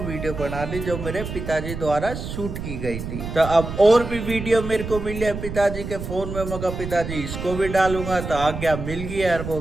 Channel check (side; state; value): right; noise; rumble, 7 dB below the sound